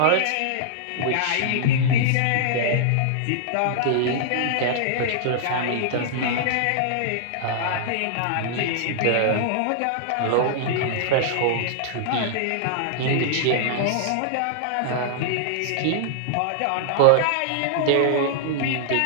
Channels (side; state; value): both; different; correlation -0.01